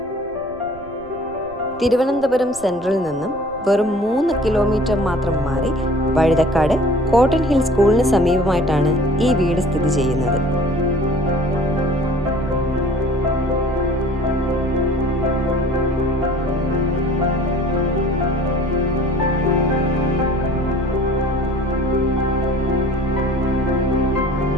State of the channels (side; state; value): right; noise; rumble, 21 dB below the sound